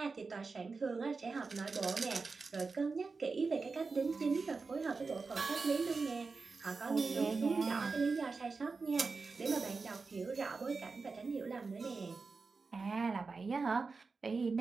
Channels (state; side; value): quieter; left; 4.3 dB